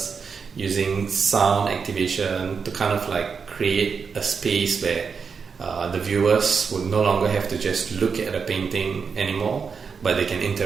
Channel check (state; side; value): quieter; left; 5.7 dB